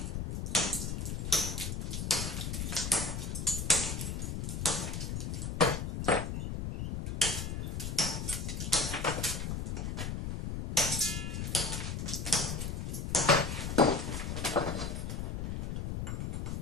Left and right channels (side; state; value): left; noise; rumble, 3 dB below the sound